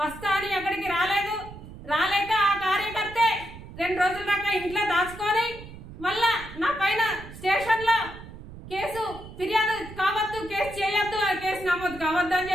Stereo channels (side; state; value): right; noise; rumble, 15 dB below the sound